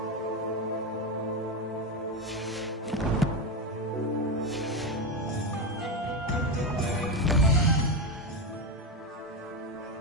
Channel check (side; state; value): both; normal; correlation 0.13